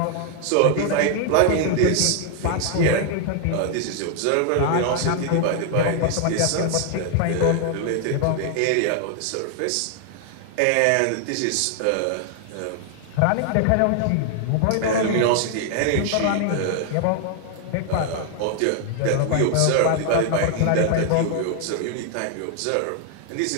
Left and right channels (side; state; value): both; different; correlation 0.00